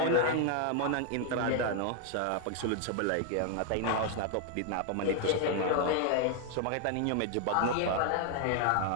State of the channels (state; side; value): different; both; correlation 0.00